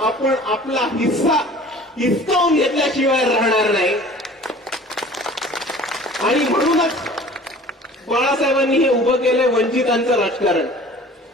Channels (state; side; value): normal; both; correlation 0.46